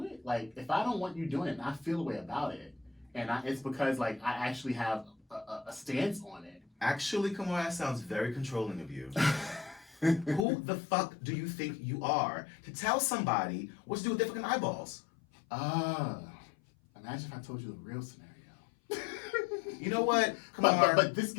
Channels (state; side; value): drops out; right; at 10.5 s